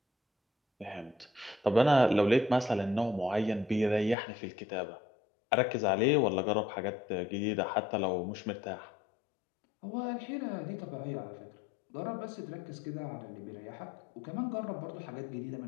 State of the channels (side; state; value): right; drops out; at 4.2 s